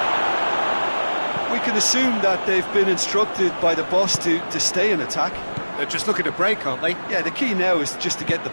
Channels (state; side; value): inverted; both; correlation -1.00